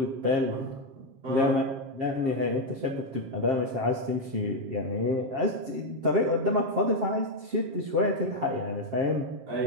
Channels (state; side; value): late; left; 7.5 ms